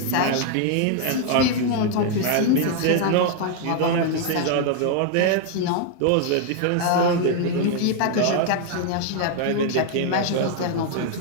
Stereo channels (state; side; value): different; both; correlation 0.00